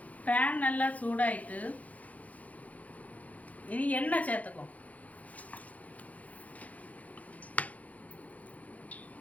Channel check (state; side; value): late; right; 0.072 ms